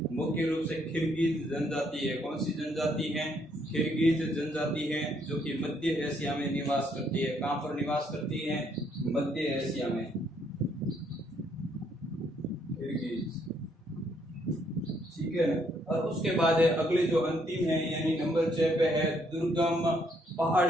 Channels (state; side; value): normal; both; correlation 0.70